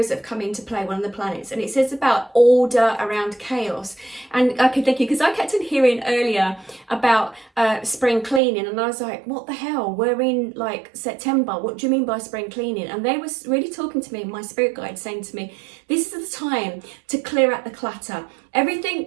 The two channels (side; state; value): left; drops out; at 8.4 s